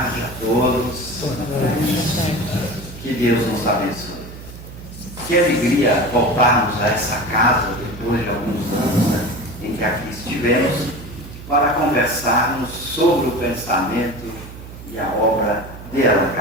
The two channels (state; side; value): noise; right; hum, 14 dB below the sound